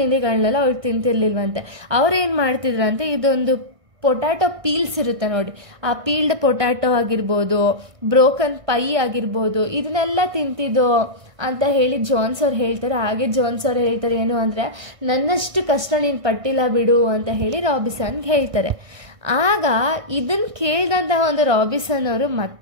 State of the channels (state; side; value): late; left; 1.6 ms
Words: ಅವ್ರು ತಿಂತಿರ್ಲಿಲ್ವಂತೆ. ಅವ್ರೇನು ಮಾಡ್ತಿದ್ರಂತೆ, ಇದೊಂದು ಪೊಟ್ಯಾಟೊ ಪೀಲ್ಸ್ ಇರುತ್ತೆ ನೋಡಿ, ಆ ಪೀಲ್ಡ್ ಪೊಟ್ಯಾಟೊ ಆಗಿರ್ಬೋದು, ಬ್ರೋಕನ್ ಪೈ ಆಗಿರ್ಬೋದು, ಇದನ್ನೆಲ್ಲ ತಿಂತಿದ್ದೋ ಅಂತ ಹೇಳಿ ಜೋನ್ಸ್ ಅವ್ರು ಹೇಳ್ತಾರೆ. ಹಾಗೆ ಜೋನ್ಸ್ ಅವ್ರು ಹೇಳ್ತಾರೆ ಏನು ಅಂದರೆ, ನನ್ನಷ್ಟು ಕಷ್ಟ ನೀನು ಪಟ್ಟಿಲ್ಲ ಬಿಡು ಅಂತ ಹೇಳಿ ರಾಬಿನ್ಸನ್ಗೆ ಹೇಳ್ತಾರೆ. ಆಗ ಇದನ್ನು ಕೇಳಿದಂತಹ ಒಂದು ರಾಬಿನ್ಸನ್ ಅವರು